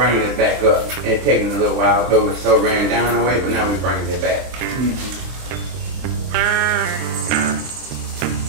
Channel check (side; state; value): left; late; 23 ms